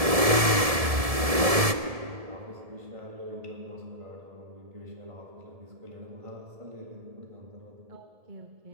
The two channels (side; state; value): left; late; 1.7 ms